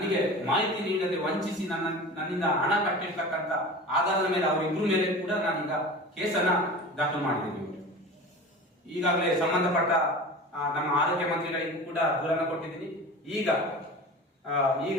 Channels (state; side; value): normal; both; correlation 0.34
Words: ಮಾಹಿತಿ ನೀಡದೆ ವಂಚಿಸಿ ನನ್ನಿಂದ ಹಣ ಕಟ್ಟಿರ್ತಕ್ಕಂಥ ಆಧಾರದ ಮೇಲೆ ಅವರಿಬ್ಬರ ಮೇಲೆ ಕೂಡ ನಾನೀಗ ಕೇಸನ್ನ ದಾಖಲು ಮಾಡಿದ್ದೀನಿ. ಈಗಾಗಲೇ ಸಂಬಂಧಪಟ್ಟ ನಮ್ಮ ಆರೋಗ್ಯ ಮಂತ್ರಿಗಳಿಗೂ ಕೂಡ ದೂರನ್ನು ಕೊಟ್ಟಿದ್ದೀನಿ.